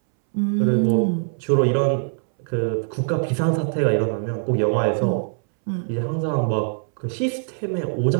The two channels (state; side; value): silent; left; 64 dB below the other